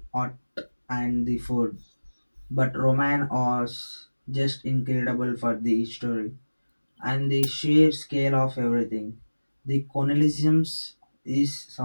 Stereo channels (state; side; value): inverted; both; correlation -1.00